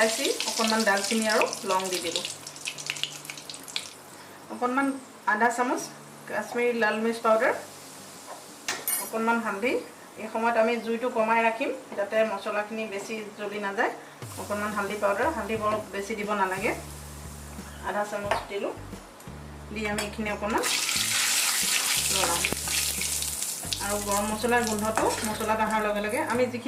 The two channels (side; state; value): both; identical; correlation 1.00